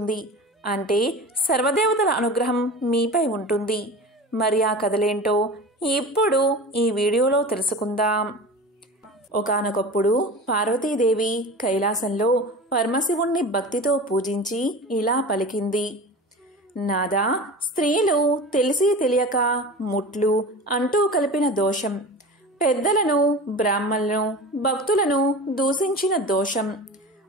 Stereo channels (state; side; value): normal; both; correlation 0.33